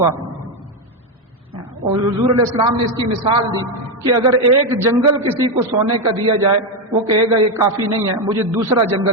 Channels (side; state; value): both; normal; correlation 0.07